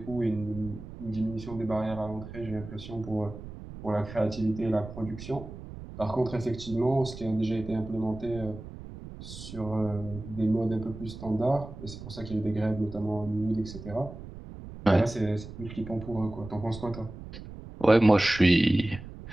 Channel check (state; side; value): noise; right; rumble, 13 dB below the sound